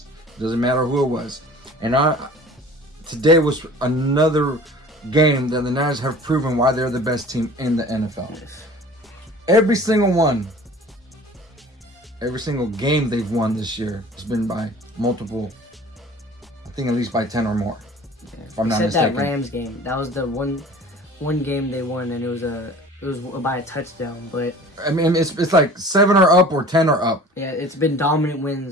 Doesn't matter who it was. And today was another game that the Niners have proven why they're the best team in the NFL. Yes. Every single one, every single game they've won this year has been by multiple, I think at least by 10 or more. Yeah. If I'm not mistaken. That Rams game. That was the one game they won, and it was by a touchdown. But I mean, it's like 7 or up or 10 or up. yeah, it's been dominant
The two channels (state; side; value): normal; both; correlation 0.44